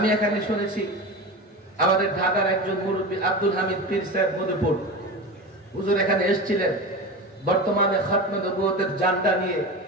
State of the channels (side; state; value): both; normal; correlation 0.27